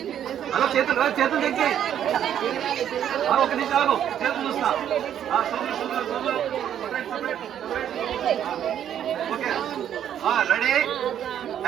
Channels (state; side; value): quieter; left; 10.0 dB